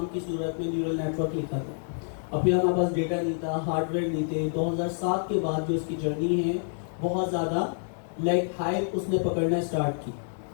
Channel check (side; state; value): right; silent; 59 dB below the other